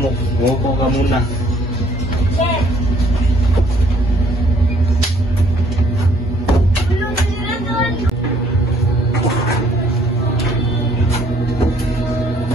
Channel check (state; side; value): normal; both; correlation 0.62